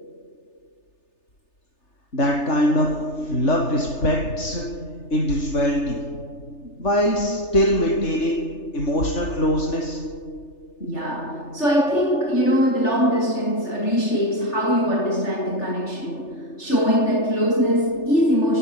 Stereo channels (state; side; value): late; right; 3.3 ms